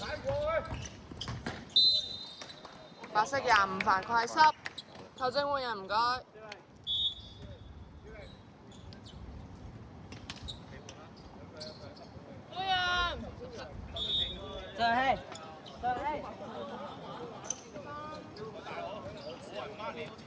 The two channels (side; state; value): both; identical; correlation 1.00